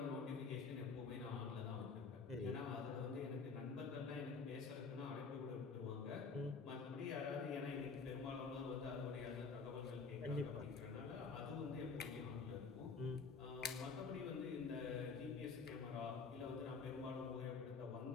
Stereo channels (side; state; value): right; quieter; 4.8 dB